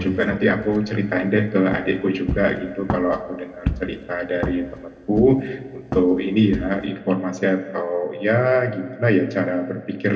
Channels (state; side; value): identical; both; correlation 1.00